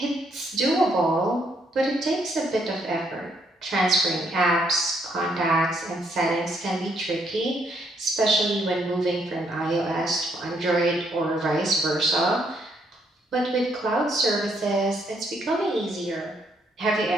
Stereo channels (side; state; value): both; normal; correlation 0.72